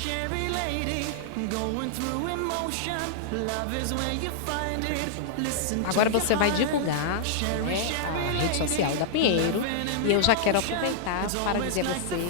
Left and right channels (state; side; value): different; both; correlation -0.01